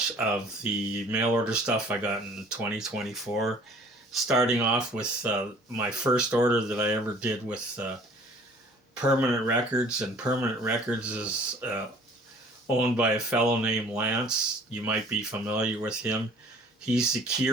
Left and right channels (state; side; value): normal; both; correlation 0.52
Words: of the mail order stuff I got in 2024. Starting off with my first order that I ever did with Permanent Records, and Permanent Records is owned by a fellow named Lance. You might be familiar with him. He's the